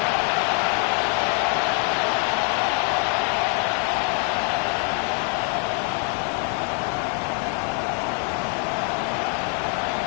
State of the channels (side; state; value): right; quieter; 36.6 dB